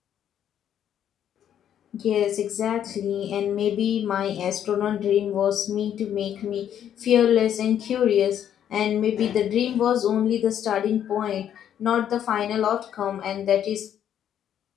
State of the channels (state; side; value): quieter; right; 9.9 dB